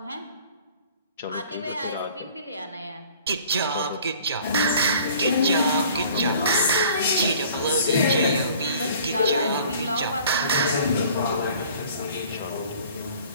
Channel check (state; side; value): inverted; both; correlation -0.50